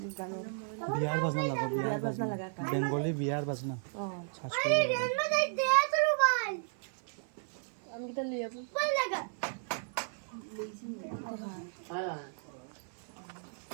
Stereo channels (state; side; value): silent; left; 55 dB below the other